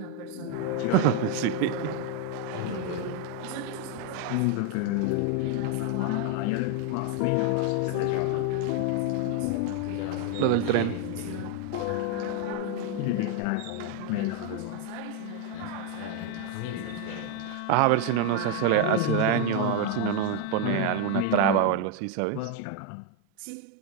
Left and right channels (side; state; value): both; different; correlation 0.01